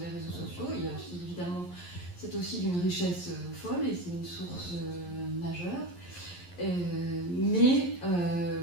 réseaux sociaux. Il y a aussi, évidemment, c'est aussi d'une richesse folle et c'est une source majeure. Mais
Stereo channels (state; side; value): late; right; 11 ms